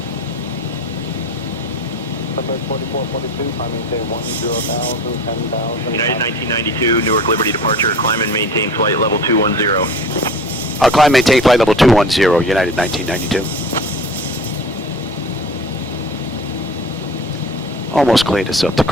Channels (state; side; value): normal; both; correlation 0.38